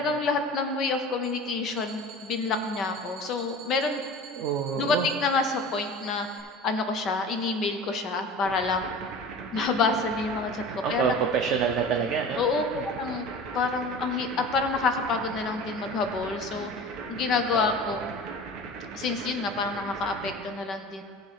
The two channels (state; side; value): normal; both; correlation 0.37